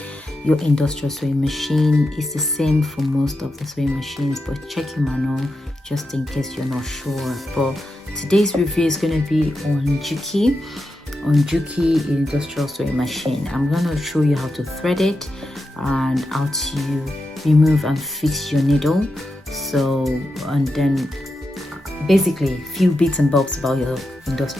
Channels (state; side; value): normal; both; correlation 0.88